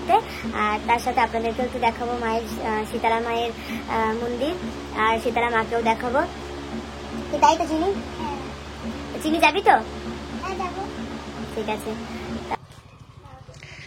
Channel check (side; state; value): both; identical; correlation 1.00